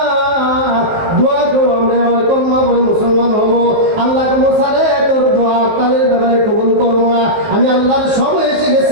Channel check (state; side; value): late; left; 19 ms